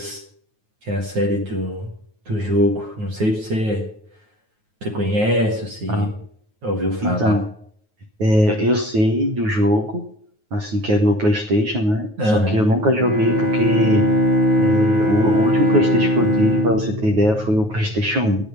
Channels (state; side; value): late; left; 9.4 ms